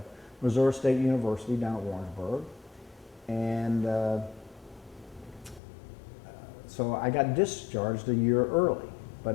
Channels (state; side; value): drops out; right; at 5.6 s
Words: Missouri State University down at Warrensburg, and so I got discharged a year early. But